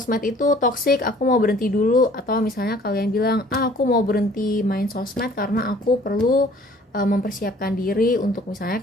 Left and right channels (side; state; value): both; normal; correlation 0.54